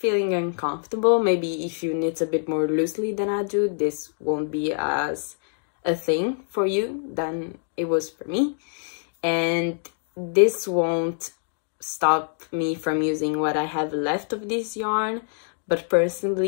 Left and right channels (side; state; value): right; silent; 62 dB below the other